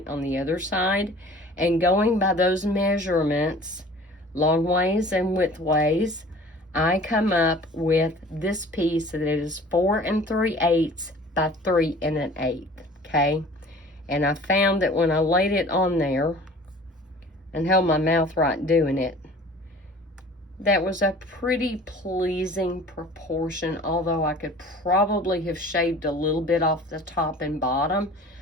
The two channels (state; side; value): normal; both; correlation 0.46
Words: on the other side, and going by those measurements, long ways and width ways, I come up with this piece that is 4 3/8 by 3 1/8, okay? And I found that when I laid it on there and held my mouth right doing it, that was a pretty pleasing proportion, although I could probably have shaved a little bit off the top and bottom,